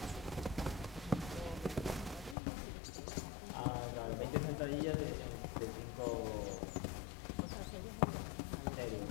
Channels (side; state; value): right; drops out; at 2.4 s